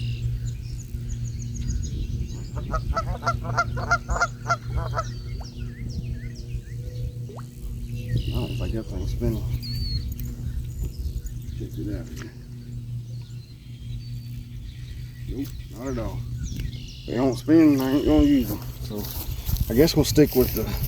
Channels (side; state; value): both; identical; correlation 1.00